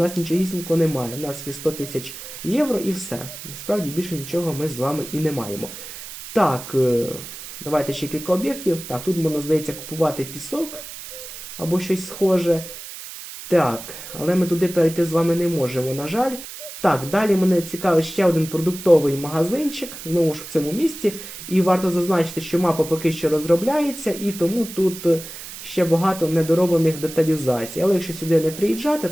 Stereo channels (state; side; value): noise; right; hiss, 12 dB below the sound